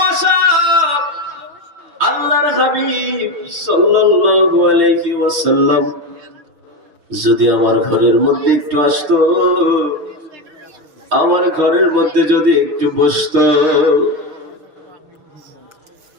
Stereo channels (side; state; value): left; late; 6.4 ms